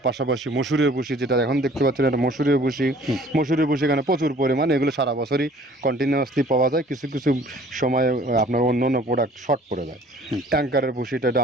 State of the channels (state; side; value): normal; both; correlation 0.53